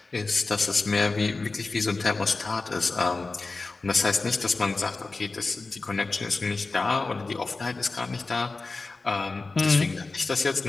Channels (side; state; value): right; quieter; 3.6 dB